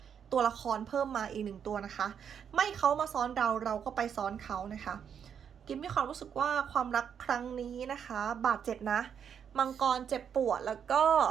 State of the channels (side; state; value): left; quieter; 7.8 dB